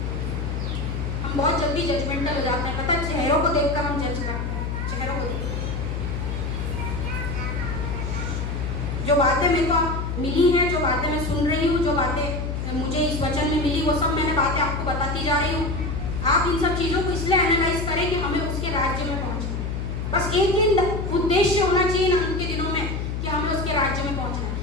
हम बहुत जल्दी जजमेंटल हो जाते हैं, पता है, चेहरों को देखकर हम जज करते हैं, चेहरों को देखकर। जो बातें मेरे को मिली हैं, जो बातें मैं सुन रही हूँ, जो बातें मुझे इस वचन में मिली, वो सब मैंने बातें आपको बताती जा रही हूँ। आप इन सब चीज़ों को इसलिए एनालाइज करें कि हमें उसके राज्य में पहुँचना। बस एक ही उद्देश्य होना चाहिए ना उनके दिनों में कि हमें उसके राज्य में पहुँचना है।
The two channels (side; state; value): left; noise; hum, 3 dB below the sound